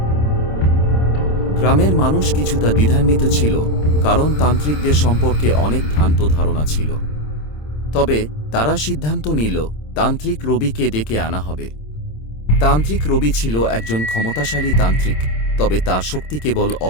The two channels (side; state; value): right; late; 26 ms